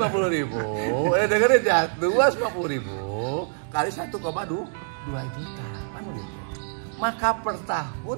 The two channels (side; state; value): left; silent; digital silence